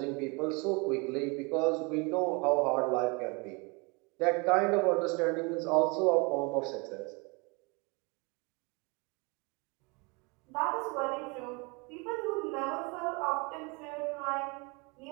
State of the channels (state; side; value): quieter; left; 29.6 dB